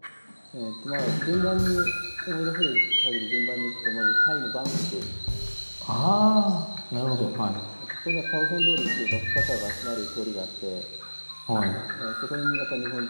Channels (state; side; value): inverted; both; correlation -1.00